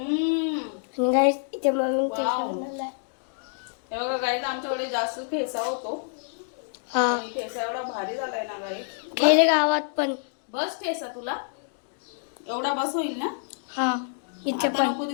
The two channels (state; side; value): silent; right; digital silence